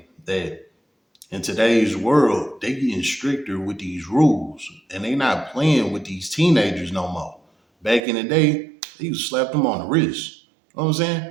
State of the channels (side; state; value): left; drops out; at 8.0 s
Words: that in today's world, they getting stricter with these rules. And they not playing with these teenagers no more. Back in the day, they used to slap them on the wrist. You know what I'm saying?